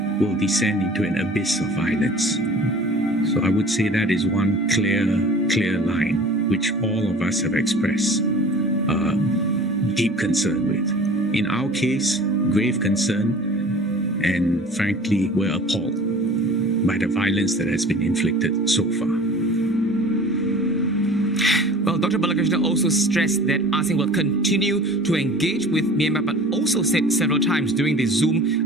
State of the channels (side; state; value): both; normal; correlation 0.44